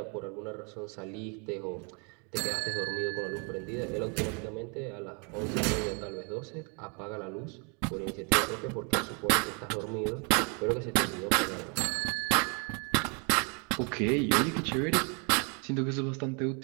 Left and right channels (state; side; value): quieter; left; 35.7 dB